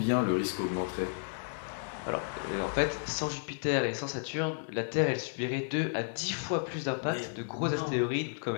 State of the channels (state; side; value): silent; right; digital silence